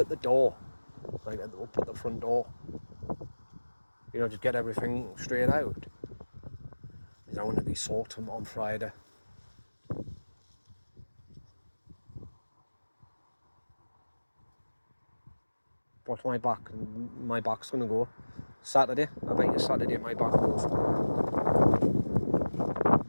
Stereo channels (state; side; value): inverted; both; correlation -1.00